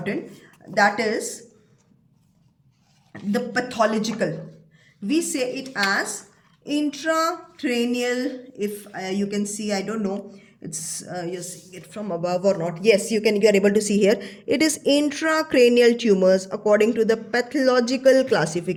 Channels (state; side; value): identical; both; correlation 1.00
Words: that is the pathological. We say it as intracranial. If you can see, I don't know, it's you're seeing it from above or not. Yes, you are able to see here. It is intracranial tumors according to the pathological